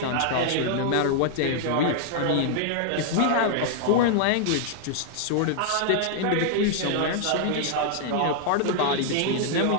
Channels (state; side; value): different; both; correlation 0.00